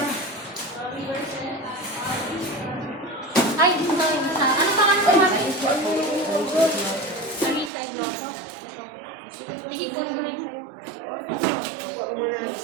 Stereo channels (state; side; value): drops out; left; at 7.7 s